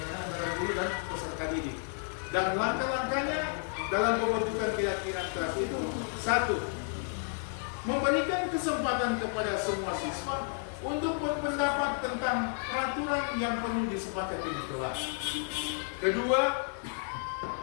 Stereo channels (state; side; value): silent; right; 57 dB below the other